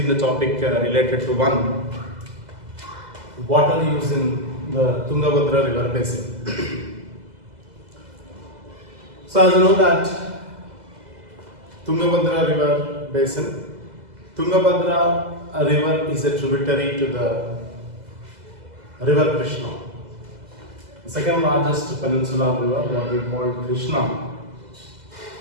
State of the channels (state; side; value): late; left; 2.0 ms